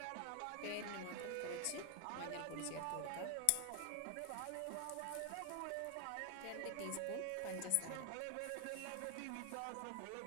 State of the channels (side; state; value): both; different; correlation 0.00